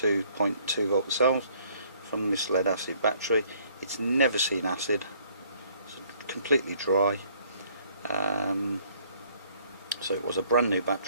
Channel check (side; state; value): both; inverted; correlation -0.62